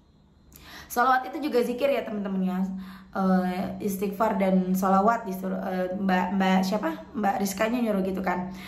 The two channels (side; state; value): both; identical; correlation 1.00